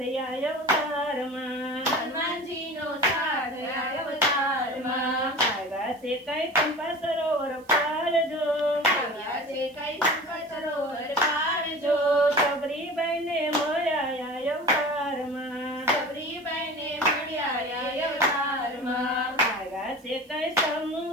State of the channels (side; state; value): right; noise; hiss, 29 dB below the sound